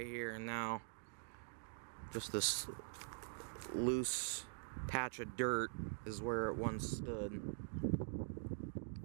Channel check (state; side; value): silent; left; digital silence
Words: here, and now just this loose patch of dirt is where it once stood.